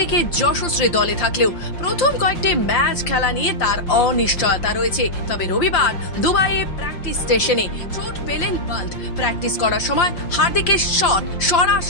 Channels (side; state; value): right; late; 5.7 ms